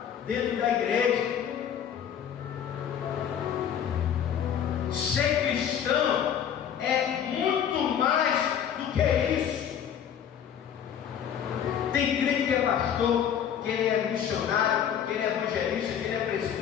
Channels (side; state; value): right; quieter; 8.9 dB